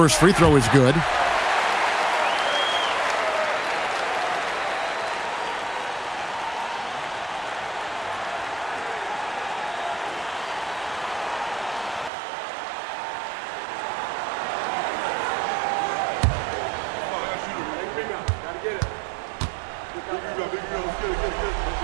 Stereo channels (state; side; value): drops out; left; at 12.1 s